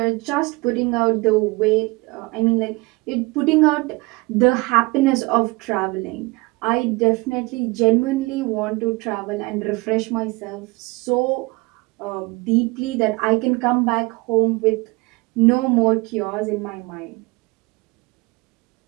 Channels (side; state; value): left; quieter; 24.9 dB